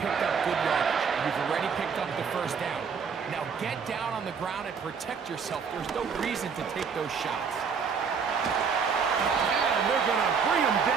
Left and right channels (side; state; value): left; quieter; 6.1 dB